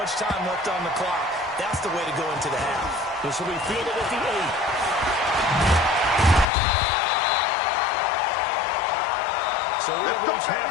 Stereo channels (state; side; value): drops out; right; at 6.5 s